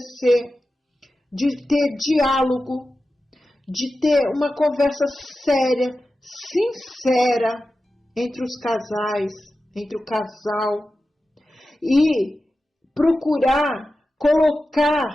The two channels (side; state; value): both; normal; correlation 0.93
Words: de ter diálogo, de ter uma conversa séria, sincera entre os casais, entre o casal, e procurar